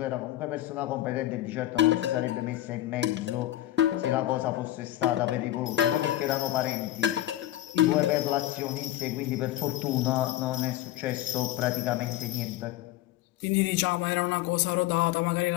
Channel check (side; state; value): right; quieter; 14.2 dB